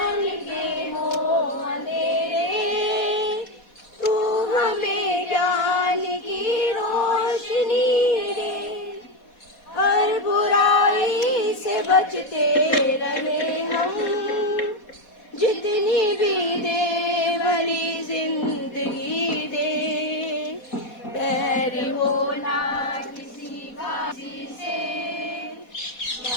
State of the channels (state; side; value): late; right; 4.1 ms